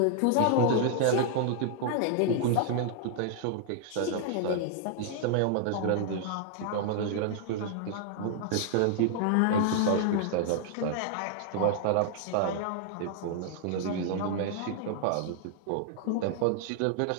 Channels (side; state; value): both; different; correlation -0.01